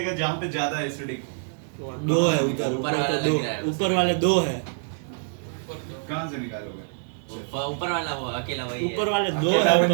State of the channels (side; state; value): left; silent; digital silence